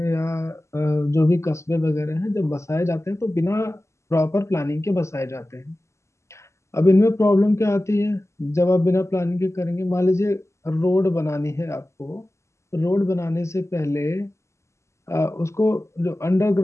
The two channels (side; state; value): right; late; 0.13 ms